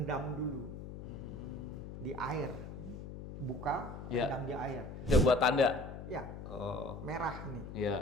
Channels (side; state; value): left; noise; hum, 10 dB below the sound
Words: dulu di air. Buka, Iya. rendam di air. Udah buat tanda. Ya, Oh. merah nih. Iya.